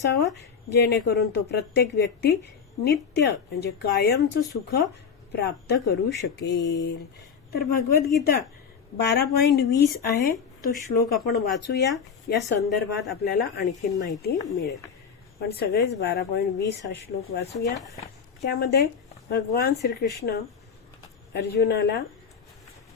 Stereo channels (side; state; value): right; quieter; 6.5 dB